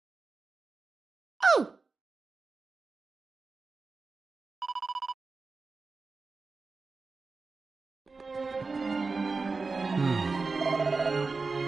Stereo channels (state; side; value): quieter; left; 4.1 dB